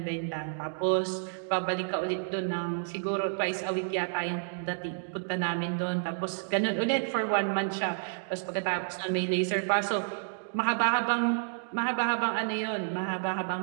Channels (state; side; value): silent; left; digital silence